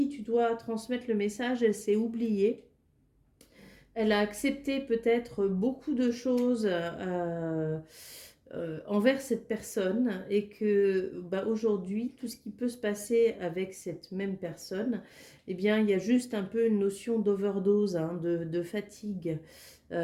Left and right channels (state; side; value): identical; both; correlation 1.00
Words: tu dois transmettre le message, elle s'est oubliée. Elle a accepté peut-être beaucoup de choses envers cette personne et que bah, aujourd'hui, tout ce qui peut se passer avec cette même personne, eh bien, il y a juste un peu une notion d'overdose, hein, de fatigue.